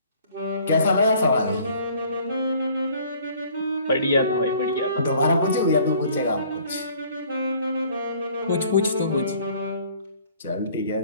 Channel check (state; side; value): inverted; both; correlation -0.55